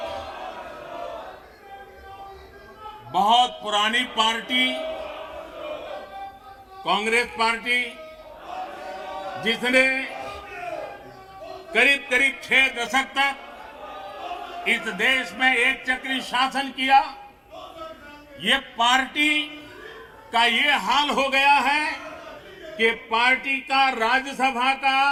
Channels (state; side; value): identical; both; correlation 1.00